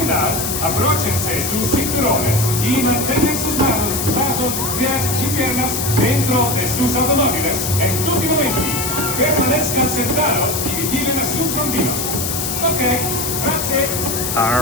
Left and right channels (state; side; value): noise; left; hiss, 2 dB below the sound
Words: abróchense sus cinturones y mantengan sus manos, brazos, pies y piernas dentro de sus automóviles en tutti momenti. Permanezcan sentados y vigilen a sus bambinos. Ok, grazie.